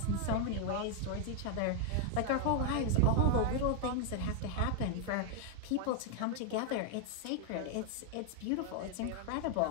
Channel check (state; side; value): different; both; correlation 0.00